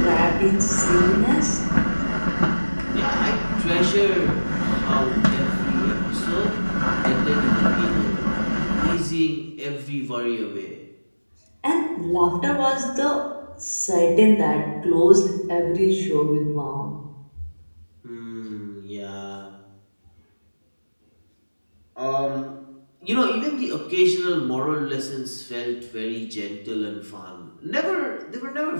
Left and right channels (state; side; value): inverted; both; correlation -1.00